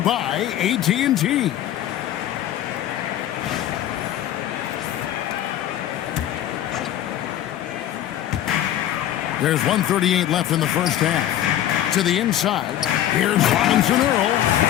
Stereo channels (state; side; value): quieter; right; 12.0 dB